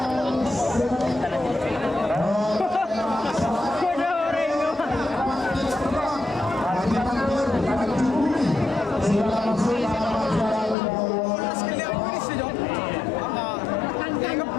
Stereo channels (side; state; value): right; drops out; at 10.8 s